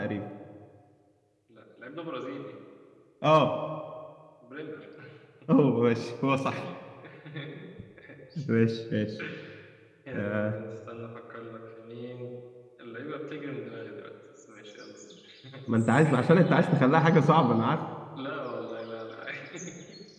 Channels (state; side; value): identical; both; correlation 1.00